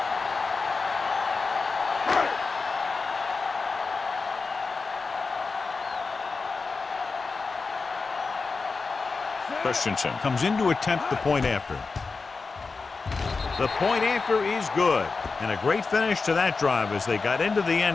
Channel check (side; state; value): right; quieter; 4.3 dB